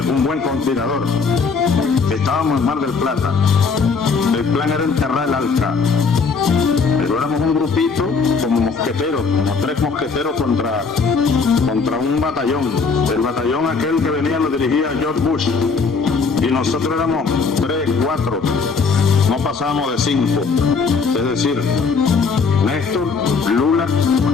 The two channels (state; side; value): quieter; right; 5.0 dB